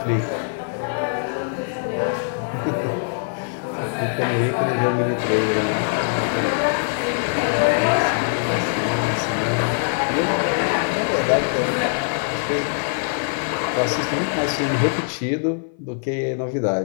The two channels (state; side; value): silent; right; 57 dB below the other